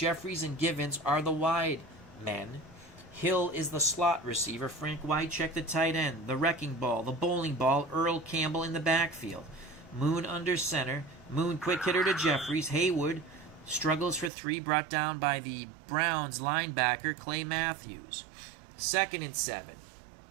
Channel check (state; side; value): drops out; left; at 14.3 s